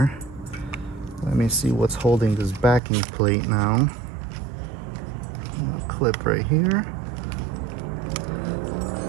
Let me see what's holding this backing plate now. A clip right here.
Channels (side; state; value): left; drops out; at 2.8 s